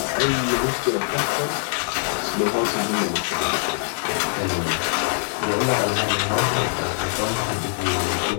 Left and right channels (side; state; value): right; silent; 59 dB below the other